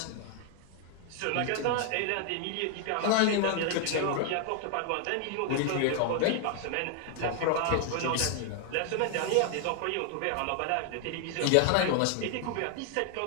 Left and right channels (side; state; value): both; different; correlation 0.00